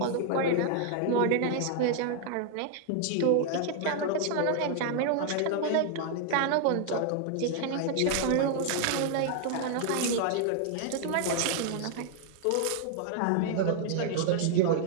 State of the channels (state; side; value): different; both; correlation 0.00